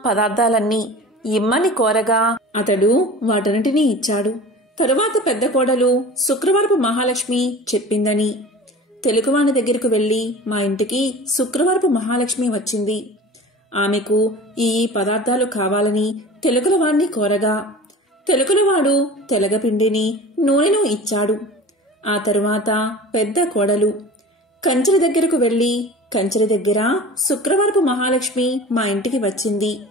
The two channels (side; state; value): both; normal; correlation 0.38